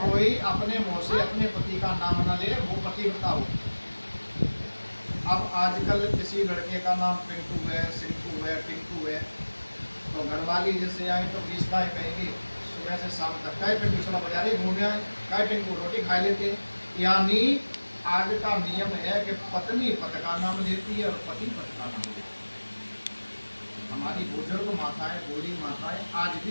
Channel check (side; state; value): both; inverted; correlation -1.00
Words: कोई अपने मुंह से अपने पति का नाम न ले, वो पतिव्रता हो। अब आजकल किसी लड़के का नाम पिंटू है, सिंटू है, टिंकू है, तो घरवाली जैसे आए तो 20 गाय कहेंगे सुबह से शाम तक, काय पिंटू चला बाजारे घूमे आए, काय टिंकू रोटी खा लेते। यानी आज का नियम है कि पत्नी पति का नाम लेती है और पति पति का नाम लेती है। हमारी बुजुर्ग माताएं, बूढ़ी माताएं आज